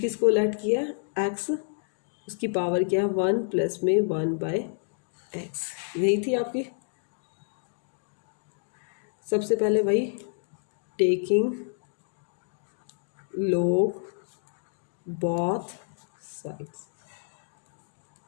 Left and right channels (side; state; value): right; silent; digital silence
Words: किसको लैट किया है? x, उसकी पावर क्या है? 1 प्लस में 1/x, यही थी आपकी। सबसे पहले वही taking log both sides,